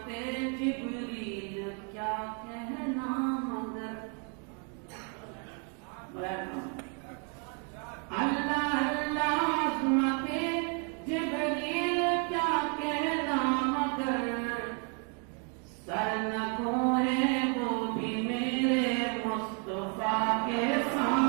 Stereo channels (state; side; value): quieter; left; 39.3 dB